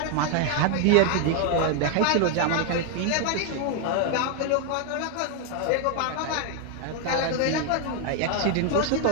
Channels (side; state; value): both; different; correlation 0.01